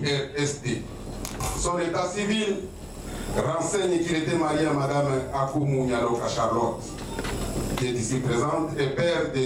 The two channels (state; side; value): identical; both; correlation 1.00